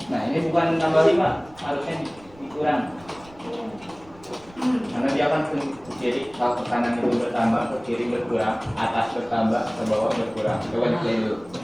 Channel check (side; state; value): right; noise; rumble, 25 dB below the sound